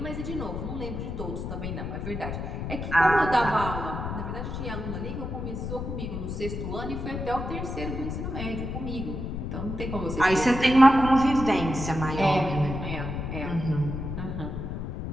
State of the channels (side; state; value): left; noise; rumble, 5 dB below the sound